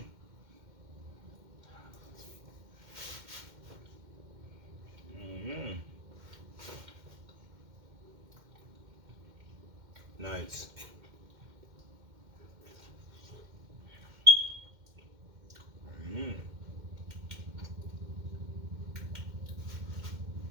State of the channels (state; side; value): late; left; 2.1 ms